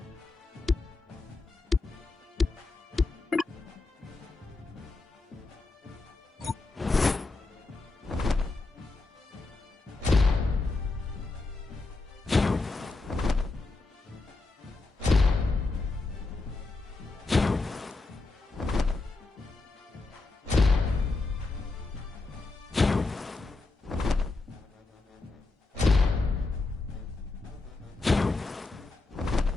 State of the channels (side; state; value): right; quieter; 3.5 dB